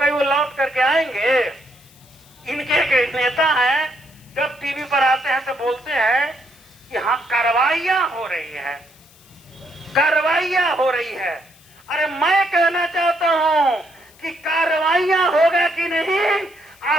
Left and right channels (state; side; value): noise; left; hiss, 27 dB below the sound